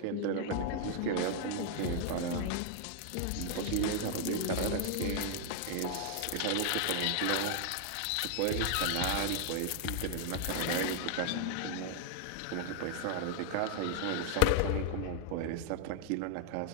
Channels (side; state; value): both; different; correlation 0.00